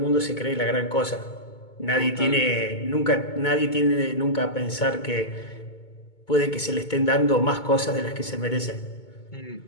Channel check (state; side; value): late; right; 2.2 ms